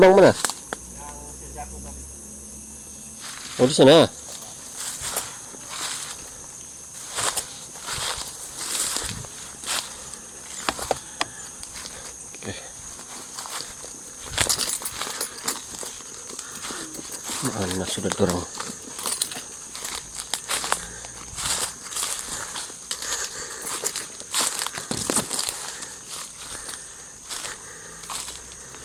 mana? Oh di sana. Oke. Mana sudah dorong?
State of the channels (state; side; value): identical; both; correlation 1.00